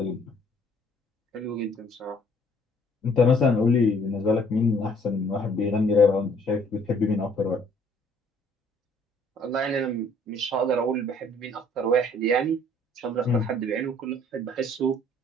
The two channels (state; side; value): normal; both; correlation 0.60